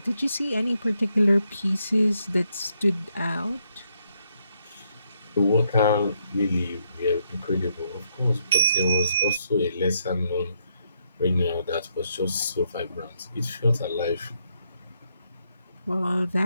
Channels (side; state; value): both; inverted; correlation -0.77